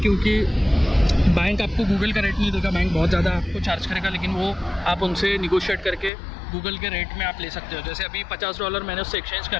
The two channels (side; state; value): right; drops out; at 6.1 s